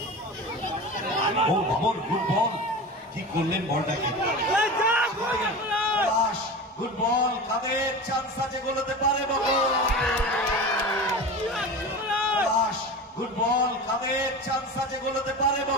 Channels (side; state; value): both; normal; correlation 0.30